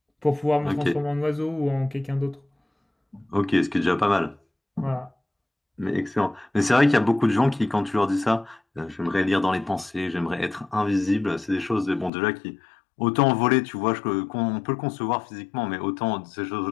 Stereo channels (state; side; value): drops out; right; at 12.1 s